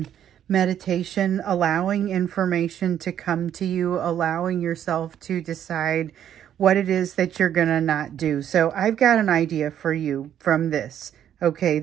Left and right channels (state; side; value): quieter; left; 10.1 dB